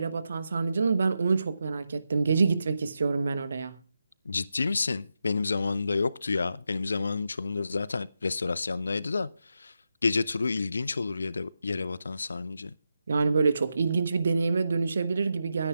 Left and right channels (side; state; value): both; inverted; correlation -0.87